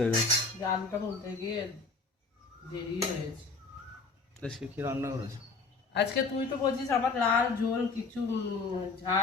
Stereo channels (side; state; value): right; quieter; 4.1 dB